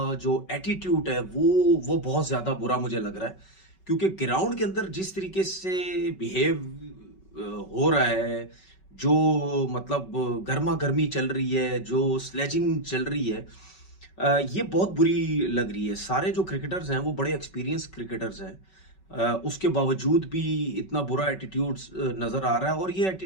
जो एटीट्यूड है वो बहुत ज्यादा बुरा मुझे लग रहा है। क्योंकि ग्राउंड के अंदर जिस तरीके से बिहेव हो रहा है, जो मतलब गर्मा गर्मी चल रही है, जो स्लेजिंग चल रही है, ये बहुत बुरी लग रही है। सारे जो क्रिकेटर्स हैं वो बड़े एक्सपीरियंस क्रिकेटर्स हैं। उसके बावजूद भी इतना बुरा एटीट्यूड नजर आ रहा है। और ये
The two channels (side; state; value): right; late; 5.3 ms